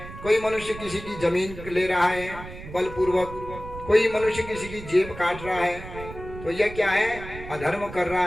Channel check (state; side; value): noise; right; rumble, 13 dB below the sound